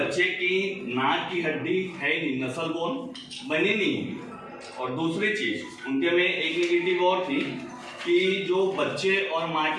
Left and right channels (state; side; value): identical; both; correlation 1.00